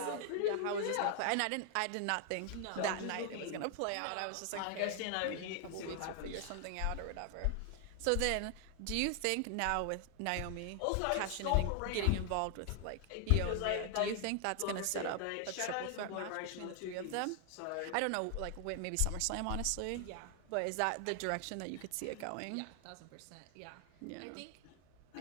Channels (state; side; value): different; both; correlation 0.00